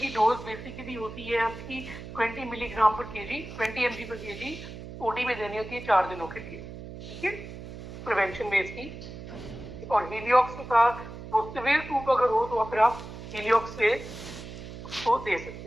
डोज बेसिकली होती है आपकी 20 मिलीग्राम पर केजी, 20 mg पर केजी ओडी में देनी होती है 4 दिनों के लिए, ठीक है, प्रिवेंशन में इसकी। और हीलियोक्स का वो सिवियर टूप अगर हो तो फिर आप हीलियोक्स से उसको दे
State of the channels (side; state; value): right; noise; hum, 12 dB below the sound